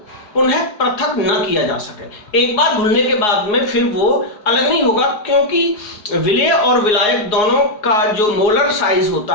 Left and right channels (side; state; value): right; late; 4.8 ms